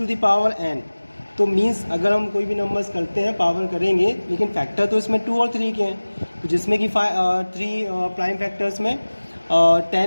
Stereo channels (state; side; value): inverted; both; correlation -1.00